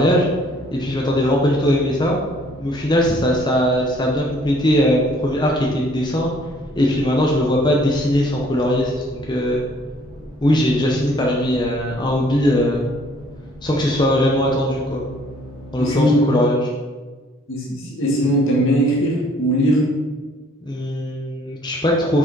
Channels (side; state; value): both; normal; correlation 0.60